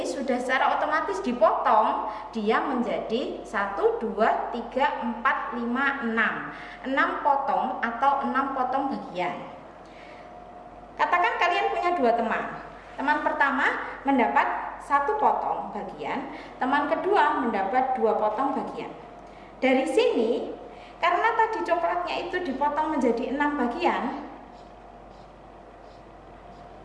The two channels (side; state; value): both; identical; correlation 1.00